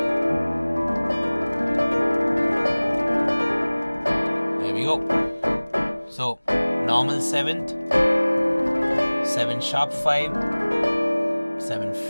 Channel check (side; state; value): both; inverted; correlation -1.00